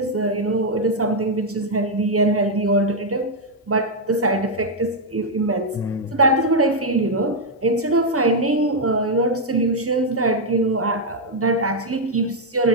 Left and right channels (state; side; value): normal; both; correlation -0.01